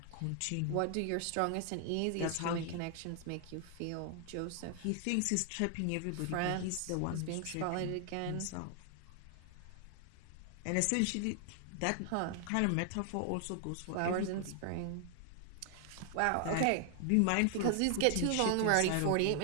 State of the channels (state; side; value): different; both; correlation 0.00